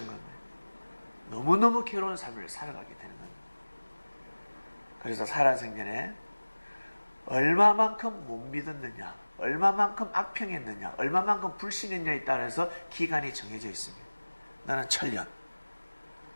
겁니다. 너무너무 괴로운 삶을 살아가게 되는 겁니다. 그래서 살아생전에 얼마만큼 못 믿었느냐, 얼마만큼 악평했느냐, 얼마만큼 불신했느냐에 따라서 기간이 정해져 있습니다. 나는 천년.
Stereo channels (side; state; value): both; inverted; correlation -1.00